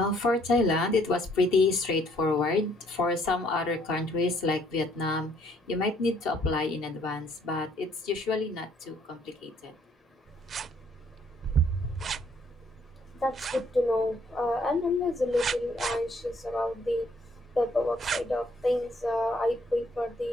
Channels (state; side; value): normal; both; correlation 0.65